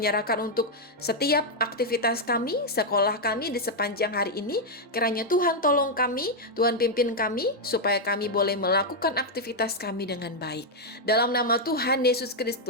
untuk setiap aktivitas kami, sekolah kami di sepanjang hari ini. Kiranya Tuhan tolong kami, Tuhan pimpin kami supaya kami boleh melakukan aktivitas kami dengan baik. Dalam nama Tuhan Yesus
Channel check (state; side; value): normal; both; correlation -0.01